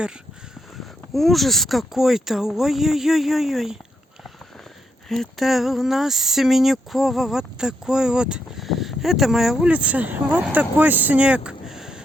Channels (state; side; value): normal; both; correlation 0.80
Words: Ужас какой-то. Ой-ой-ой-ой-ой. Это у нас Семенюкова. Вот такой вот. Это моя улица. Вот такой снег.